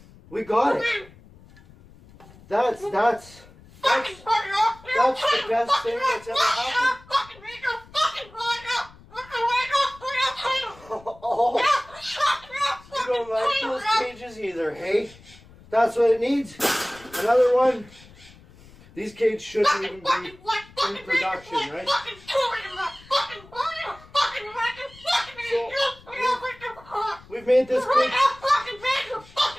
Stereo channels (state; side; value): noise; left; rumble, 23 dB below the sound